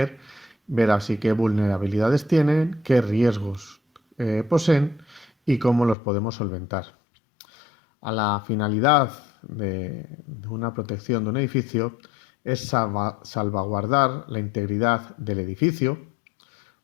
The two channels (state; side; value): drops out; right; at 6.0 s